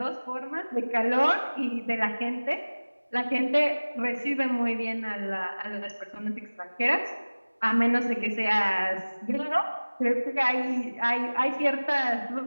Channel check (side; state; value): both; inverted; correlation -1.00